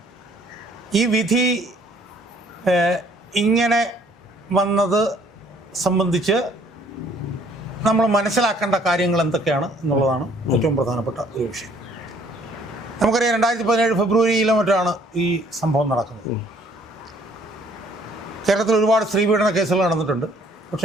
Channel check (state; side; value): normal; both; correlation 0.60